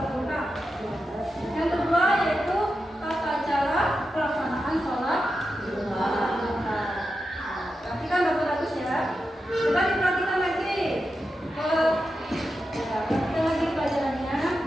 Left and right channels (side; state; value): both; normal; correlation 0.89